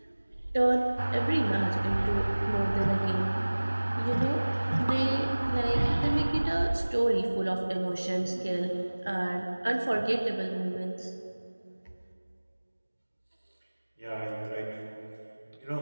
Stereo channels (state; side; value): inverted; both; correlation -1.00